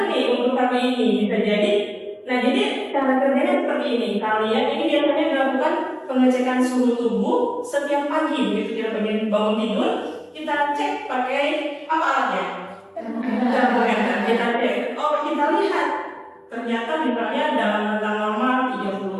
nih untuk kami ini bisa jadi. Nah jadi cara kerjanya seperti ini. Kalian ini biasanya dilakukan pengecekan suhu tubuh setiap pagi. Begitu kita bangun tidur, kita cek pakai apa alatnya? Termometer. Kita cek. Oh kita lihat. Ternyata misalnya dalam rentang normal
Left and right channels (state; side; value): identical; both; correlation 1.00